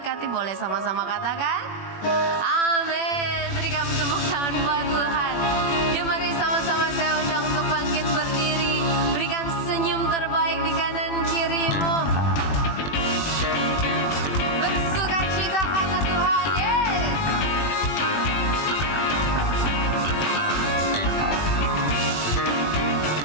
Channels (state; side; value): late; right; 21 ms